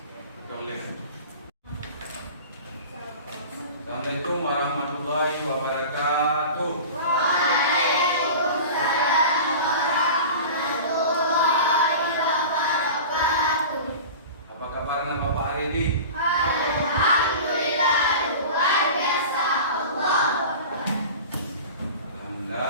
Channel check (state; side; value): inverted; both; correlation -0.35